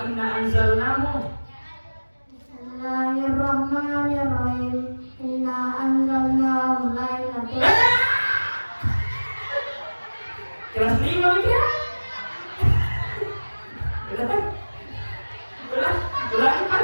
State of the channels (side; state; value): both; inverted; correlation -1.00